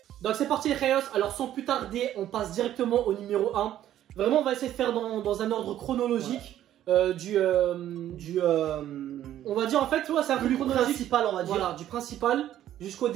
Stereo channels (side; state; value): left; quieter; 12.0 dB